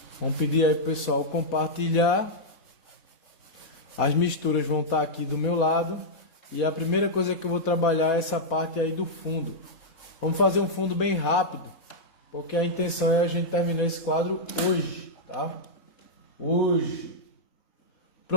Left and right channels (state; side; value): late; right; 4.1 ms